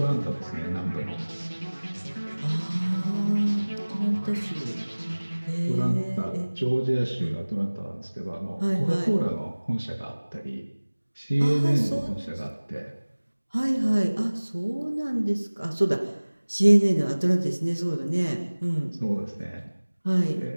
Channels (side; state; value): both; inverted; correlation -1.00